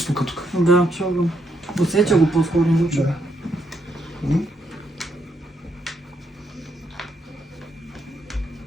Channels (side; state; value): both; normal; correlation 0.77